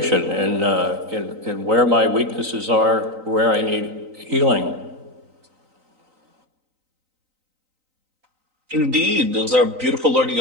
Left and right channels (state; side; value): late; left; 3.9 ms